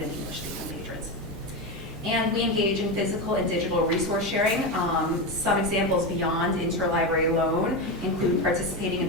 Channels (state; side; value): normal; both; correlation 0.15